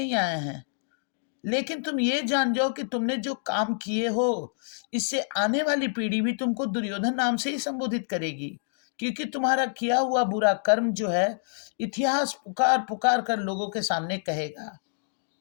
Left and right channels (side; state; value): right; silent; digital silence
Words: आए हैं, लेकिन तुम ये जान जाओ कि तुमने जो काम किए हो इससे आने वाली पीढ़ी भी तुमको दुर्योधन नाम से ही संबोधित करेगी, क्योंकि तुम्हारा किया हुआ बुरा कर्म जो है इतिहास पुकार पुकार कर लोगों के सामने कहेगा।